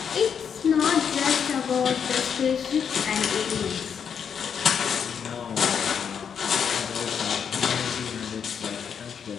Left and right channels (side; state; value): right; quieter; 7.3 dB